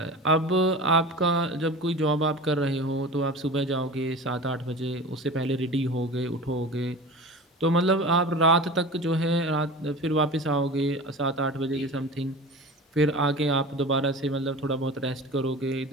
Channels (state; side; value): normal; both; correlation 0.34